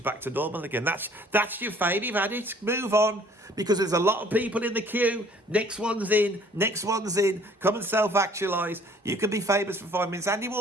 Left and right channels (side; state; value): both; normal; correlation 0.56